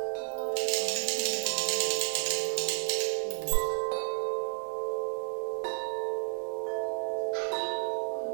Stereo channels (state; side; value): silent; left; digital silence